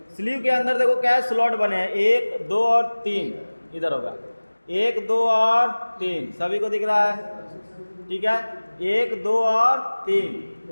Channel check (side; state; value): both; inverted; correlation -1.00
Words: स्लीव के अंदर देखो क्या है, स्लॉट बने हैं 1, 2 और 3। इधर होगा 1, 2 और 3, सभी को दिख रहा है। ठीक है, 1, 2 और